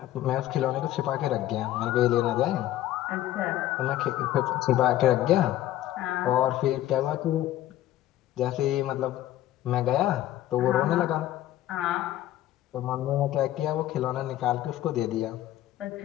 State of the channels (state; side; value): quieter; right; 13.7 dB